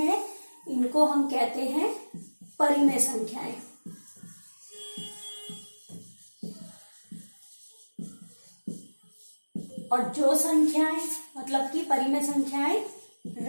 इनको हम कहते हैं परिमेय संख्याएं। और जो संख्याएं मतलब कि परिमेय संख्याएं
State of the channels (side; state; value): both; inverted; correlation -1.00